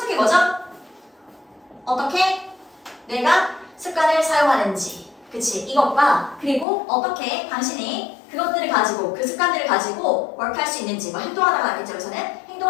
게 뭐죠? 어떻게 내가 습관을 사용하는지, 그치? 이것과 그리고 어떻게 당신이 그것들을 가지고 그 습관들을 가지고 work할 수 있는지, 뭐 행동하다가 알겠죠? 그래서는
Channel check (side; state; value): right; drops out; at 6.7 s